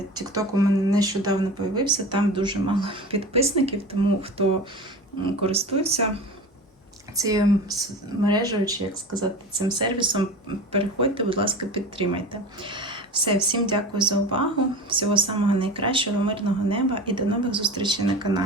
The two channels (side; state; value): both; normal; correlation 0.32